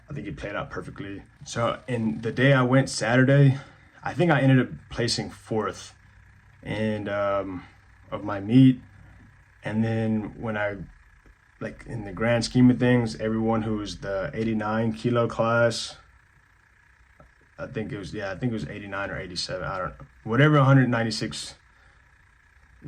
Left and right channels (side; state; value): both; identical; correlation 1.00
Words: I think it played out perfectly. So in the day I went, Saturday, I think I ended up placing 4th and of my meet. And then when I, like, in the grand scheme of things, everyone who was the 89 kilo class, I think it was 89 or 87, I don't know, whatever, 196,